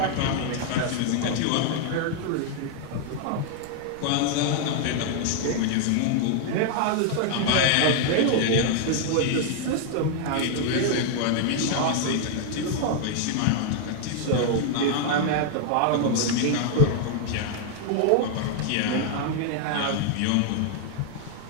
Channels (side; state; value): both; different; correlation 0.00